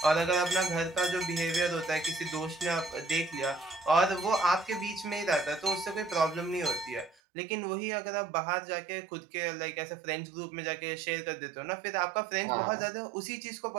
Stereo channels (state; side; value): drops out; left; at 7.2 s